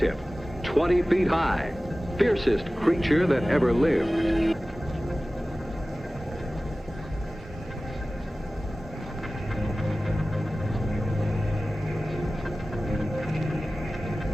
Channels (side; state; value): both; normal; correlation 0.96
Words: 20 feet high, fiercest creature that ever lived.